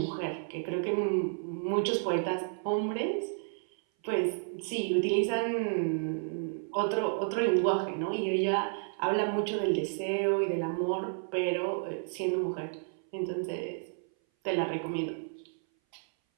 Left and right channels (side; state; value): left; silent; 57 dB below the other